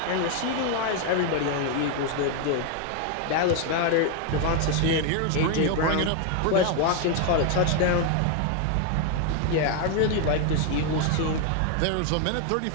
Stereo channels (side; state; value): both; different; correlation 0.01